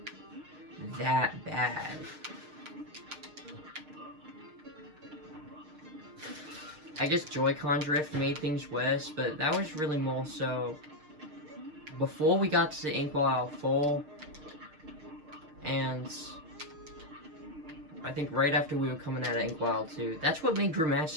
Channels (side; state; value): left; late; 6.5 ms